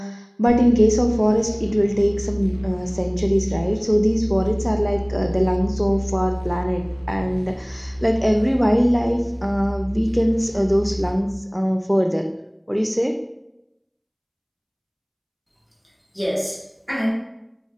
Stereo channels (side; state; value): both; identical; correlation 1.00